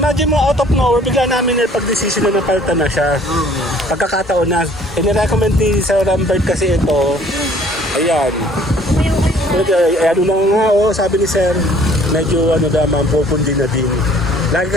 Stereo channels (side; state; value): both; normal; correlation 0.56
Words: mo, out of nowhere, bigla namin pag-decision na napalitan na siya. Pagkakataon na. Inirecommend ni Sir Lambert kasi ito. Ayan. Ano na nga, oh, sabi ni Sir, medyo ano naman, pupundi na din. Lagi